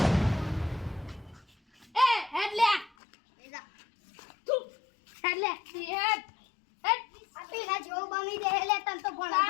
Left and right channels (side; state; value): right; drops out; at 2.9 s